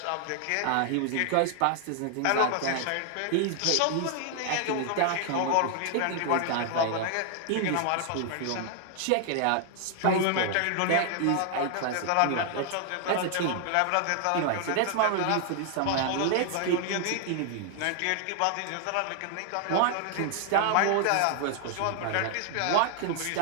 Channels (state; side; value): different; both; correlation 0.00